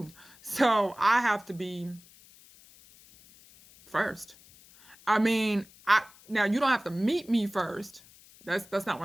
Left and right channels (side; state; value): left; noise; hiss, 25 dB below the sound